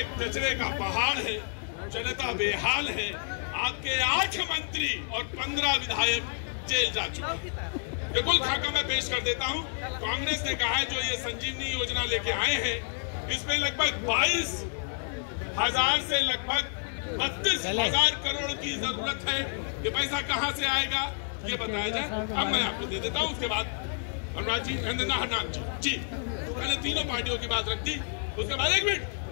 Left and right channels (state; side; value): silent; right; 58 dB below the other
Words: कचरे का पहाड़ है, जनता बेहाल है, आपके 8 मंत्री और 15 विधायक जेल जा चुके हैं। बिल्कुल खाका मैं पेश कर देता हूं। कांग्रेस ने कहा है जो ये संजीवनी योजना लेके आए हैं इसमें लगभग 22,000 से लगभग 32,000 करोड़ की जरूरत है। ये पैसा कहां से आएगा ये बताया जाए। अब मैं आपको दे देता हूं। उसके बाद अनुराग जी, हरनाम जी, तो मैंने तीनों पार्टियों की बात रख दी। उसके बाद 1 मिनट